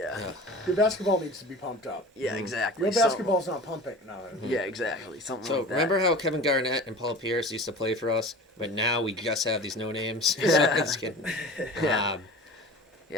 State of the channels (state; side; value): normal; both; correlation 0.38